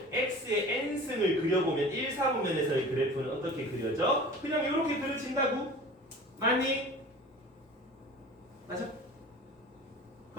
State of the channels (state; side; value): normal; both; correlation 0.40